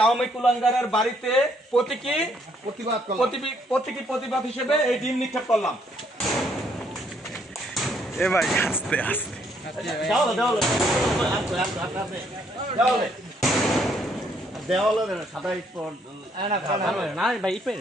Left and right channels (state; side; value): normal; both; correlation 0.69